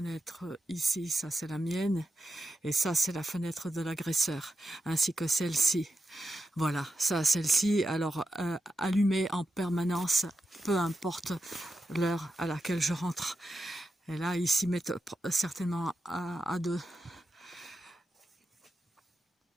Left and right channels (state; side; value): normal; both; correlation 0.88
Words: ici, ça c'est la mienne, et ça c'est la fenêtre de l'agresseur, ainsi que celle-ci. Voilà, ça, celle-ci, alors allumée en permanence, peu importe l'heure à laquelle je rentre. Et là, ils s'y mettent certainement à deux.